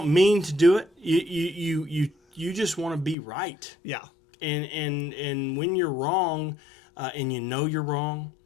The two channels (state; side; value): drops out; right; at 3.2 s